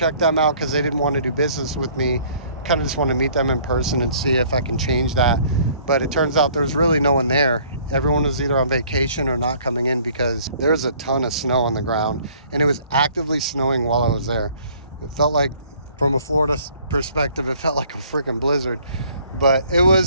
them out because they didn't want to do business with me. Kind of just want to meet them in person and see if I can change that. But it turns out there's really no one there. Everyone was either on vacation or not coming in because there's a ton of snow on the ground and it was actively snowing while I was there. It felt like, from a Florida perspective, it felt like a freaking blizzard. But it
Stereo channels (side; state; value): both; inverted; correlation -0.57